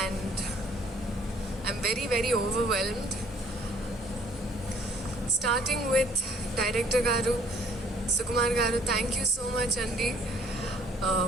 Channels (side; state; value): both; normal; correlation 0.60